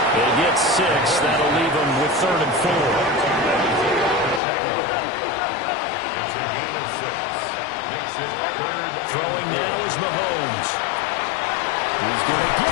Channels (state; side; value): drops out; right; at 4.4 s